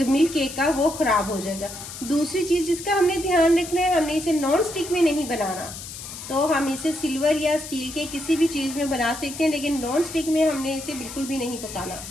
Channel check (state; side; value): noise; left; hiss, 11 dB below the sound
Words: केक का वो ख़राब हो जाएगा। दूसरी चीज़ जिसका हमने ध्यान रखना है, हमने इसे नॉन स्टिक में नहीं बनाना। तो हम इसे सिल्वर या स्टील के किसी भी चीज़ में बना सकते हैं, लेकिन नॉन स्टिक में हमने इसे बिल्कुल भी नहीं पकाना।